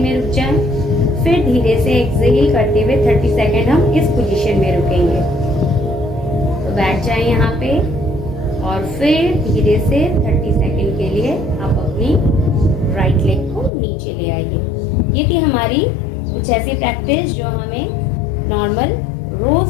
रुक जाएं, फिर धीरे से एक्सेल करते हुए 30 सेकेंड हम इस पोजीशन में रुकेंगे। तो बैठ जाएं यहाँ पे और फिर धीरे से 30 सेकेंड के लिए आप अपनी राइट लेग को नीचे ले आइए। ये थी हमारी कुछ ऐसी प्रैक्टिस जो हमें नॉर्मल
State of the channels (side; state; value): right; drops out; at 13.7 s